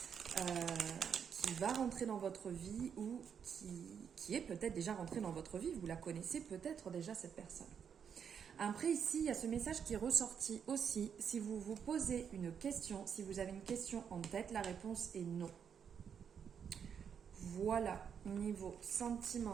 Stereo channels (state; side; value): quieter; left; 7.4 dB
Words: qui va rentrer dans votre vie ou qui est peut-être déjà rentrée dans votre vie. Vous la connaissez peut-être déjà, cette personne. Après, ici, il y a ce message qui est ressorti aussi. Si vous vous posez une question, si vous avez une question en tête, la réponse est non. Voilà, niveau